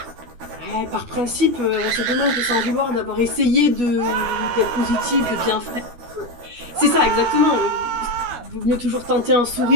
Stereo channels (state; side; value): late; left; 12 ms